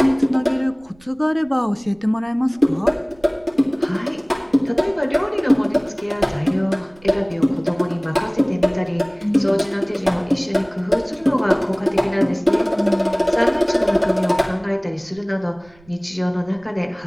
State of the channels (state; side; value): noise; right; rumble, 28 dB below the sound